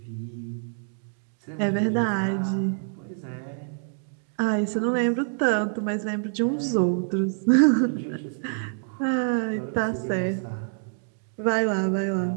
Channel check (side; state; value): left; silent; digital silence